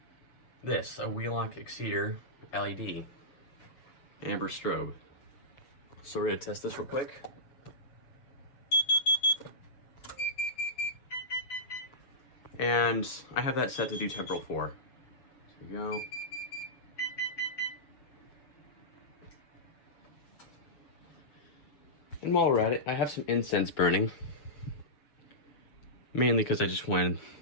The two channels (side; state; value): right; late; 7.2 ms